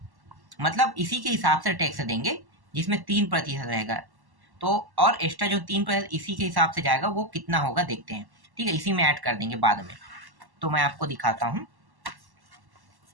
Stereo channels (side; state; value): left; late; 1.1 ms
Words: मतलब इसी के हिसाब से टैक्स देंगे, जिसमें 3% रहेगा। तो और एक्स्ट्रा जो 3% इसी के हिसाब से जाएगा, वो कितना होगा देखते हैं। ठीक है, इसी में ऐड कर देंगे बाद में। तो मैं आपको दिखाता हूँ,